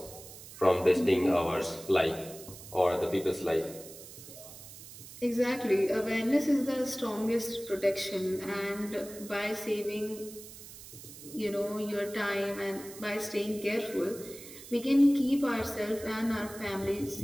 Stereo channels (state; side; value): noise; right; hiss, 15 dB below the sound